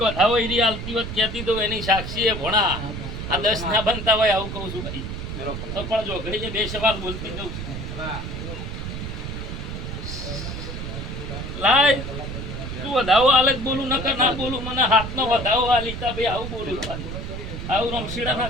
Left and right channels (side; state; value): right; noise; rumble, 6 dB below the sound